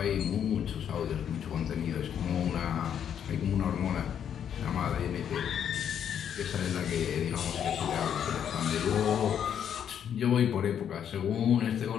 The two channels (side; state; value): right; quieter; 8.8 dB